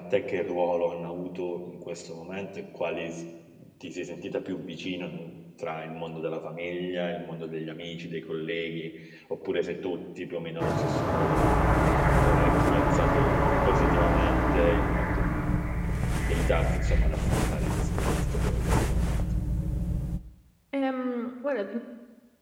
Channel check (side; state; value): both; identical; correlation 1.00